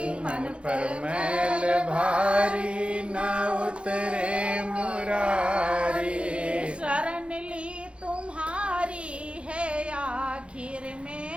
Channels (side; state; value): left; late; 0.058 ms